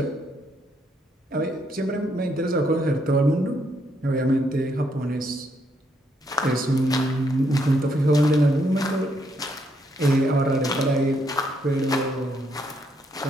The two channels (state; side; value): normal; both; correlation 0.74